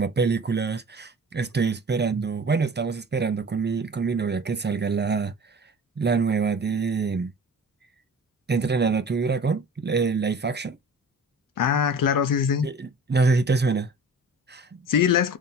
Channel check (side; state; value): both; normal; correlation 0.41